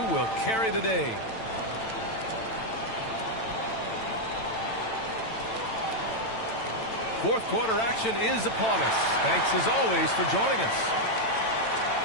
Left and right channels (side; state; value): right; late; 9.0 ms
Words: will carry the day? Fourth quarter action is upon us. Thanks as always for joining us.